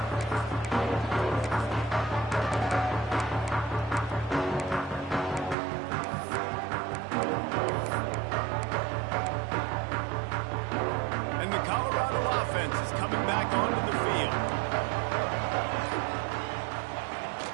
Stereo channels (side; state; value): left; drops out; at 5.6 s